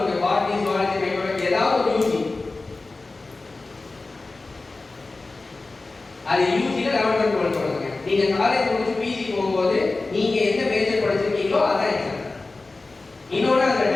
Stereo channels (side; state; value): right; quieter; 3.4 dB